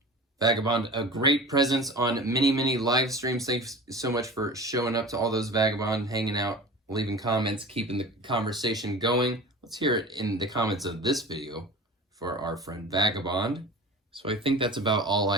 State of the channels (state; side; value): normal; both; correlation 0.36